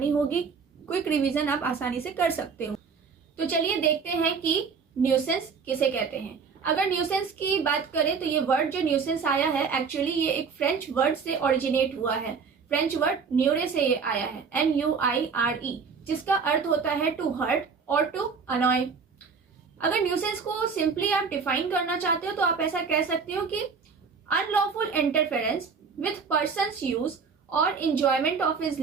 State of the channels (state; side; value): quieter; left; 5.6 dB